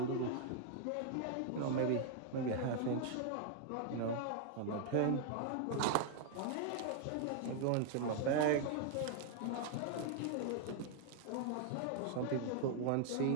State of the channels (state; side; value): different; both; correlation 0.00